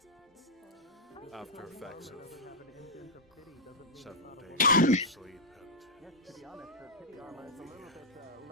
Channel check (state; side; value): normal; both; correlation -0.04